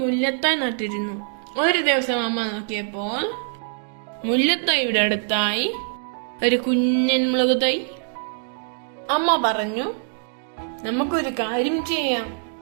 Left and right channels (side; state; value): left; silent; 61 dB below the other